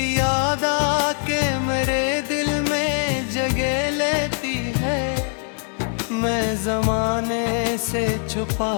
याद आके मेरे दिल में जगह लेती है। मैं जमाने से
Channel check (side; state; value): right; silent; 56 dB below the other